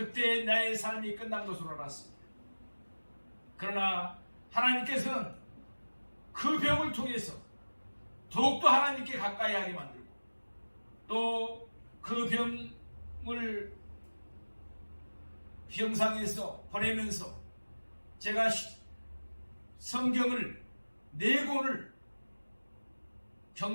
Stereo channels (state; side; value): inverted; both; correlation -1.00